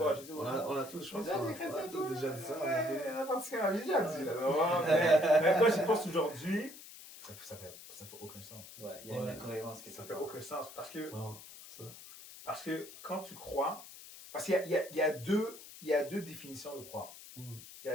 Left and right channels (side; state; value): left; noise; hiss, 16 dB below the sound